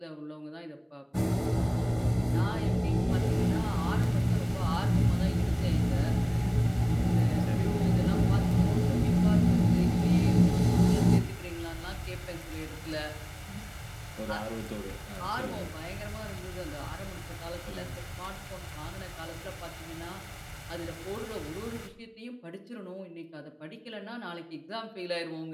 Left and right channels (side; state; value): both; identical; correlation 1.00